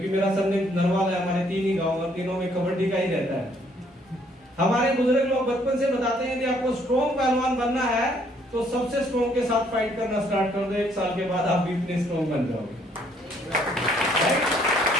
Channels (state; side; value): normal; both; correlation 0.66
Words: मेरा सरनेम नरवाल है। हमारे 3 ही गांव और तीनों में कबड्डी का ही रहता है। हमारे बुजुर्ग लोग बचपन से बताते हैं कि आपको स्ट्रॉन्ग पहलवान बनना है तो सबसे स्ट्रॉन्ग के साथ फाइट करना स्टार्ट कर दो, 1 साल के बाद आप भी इतने स्ट्रॉन्ग बन जाओगे।